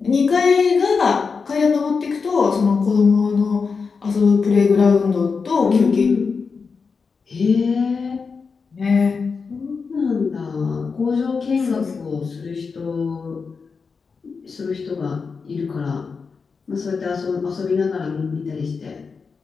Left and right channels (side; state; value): right; quieter; 5.1 dB